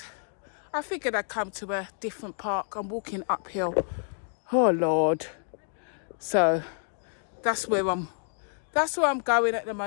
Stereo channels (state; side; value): silent; right; 59 dB below the other